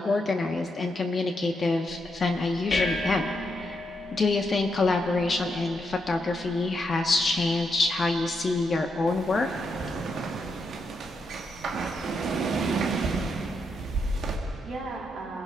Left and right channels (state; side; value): normal; both; correlation 0.81